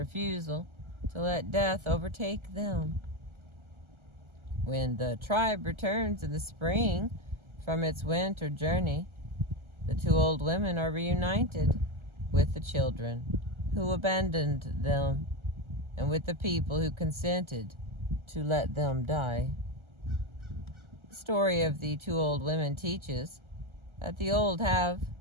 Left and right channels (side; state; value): left; late; 1.4 ms